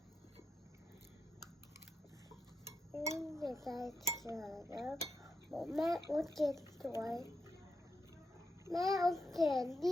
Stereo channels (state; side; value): normal; both; correlation 0.85